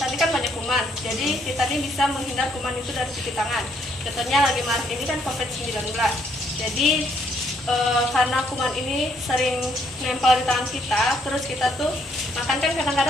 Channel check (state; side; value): normal; both; correlation 0.70